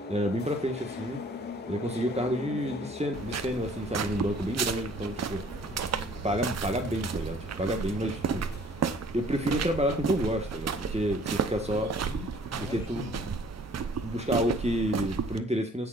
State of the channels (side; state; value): both; normal; correlation 0.55